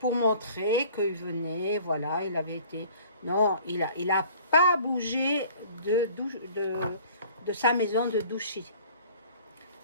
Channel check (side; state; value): both; inverted; correlation -0.50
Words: montrer qu'il venait, voilà, il avait été... Non, il a pas bougé de sa maison de Douchy.